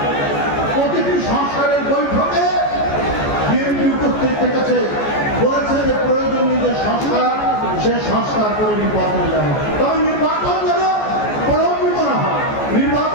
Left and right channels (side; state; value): right; late; 14 ms